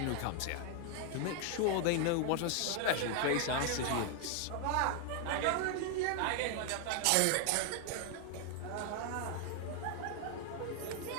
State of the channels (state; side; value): different; both; correlation 0.00